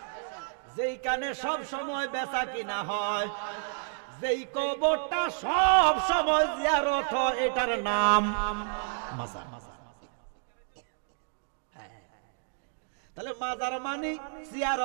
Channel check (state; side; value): silent; left; digital silence